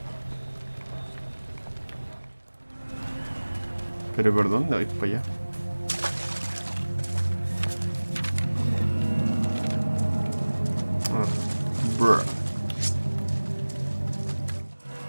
Pero ¿por dónde voy para allá? Ah, bruh.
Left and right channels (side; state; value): both; inverted; correlation -1.00